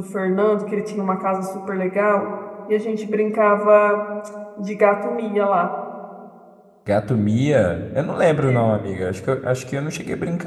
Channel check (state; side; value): identical; both; correlation 1.00